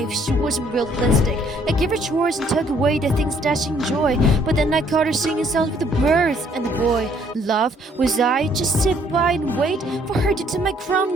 she wasn't realistic. I gave her chores and took away the things that she enjoyed, but then I caught her singing songs with the birds and the boy. Love, was I just sit by and wait for her to take my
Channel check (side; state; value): both; normal; correlation 0.64